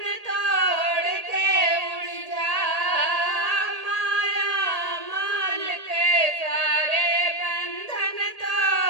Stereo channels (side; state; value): left; late; 1.8 ms